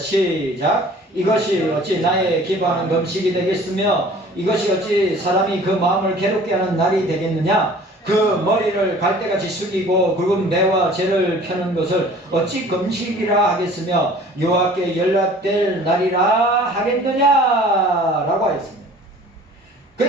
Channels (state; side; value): normal; both; correlation 0.49